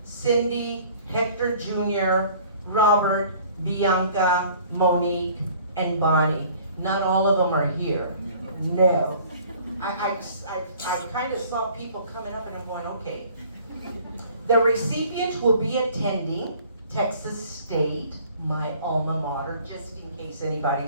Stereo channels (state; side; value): inverted; both; correlation -0.52